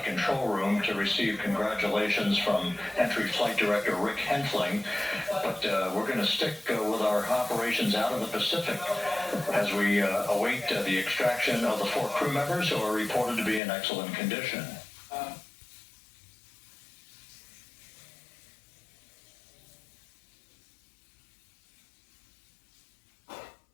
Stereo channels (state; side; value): drops out; right; at 13.6 s